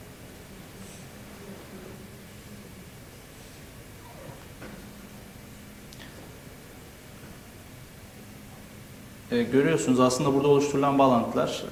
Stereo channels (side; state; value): both; identical; correlation 1.00